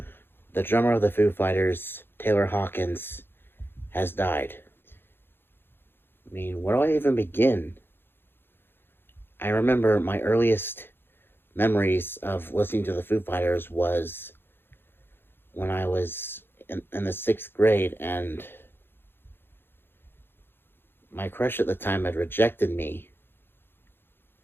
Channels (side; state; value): right; late; 0.10 ms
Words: the drummer of the Foo Fighters, Taylor Hawkins, has died. I mean, where do I even begin? I remember my earliest memories of listening to the Foo Fighters was when I was in the sixth grade, and my crush at the time had rejected me,